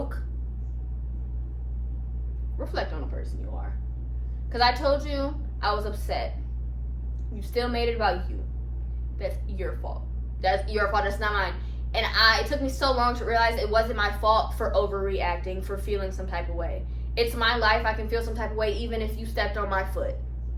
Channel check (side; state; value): both; identical; correlation 1.00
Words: reflect on the person you are. Because I told you I was upset. You still made it about you. That's your fault. That's your fault. That's not mine. And it took me so long to realize it wasn't my fault for overreacting, for feeling some type of way. It's my life. I can feel some type of way even if you stepped on my foot.